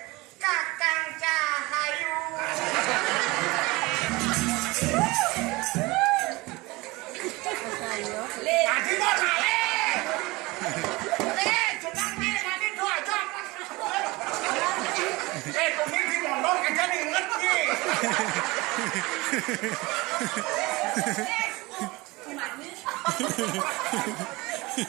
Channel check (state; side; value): quieter; left; 22.7 dB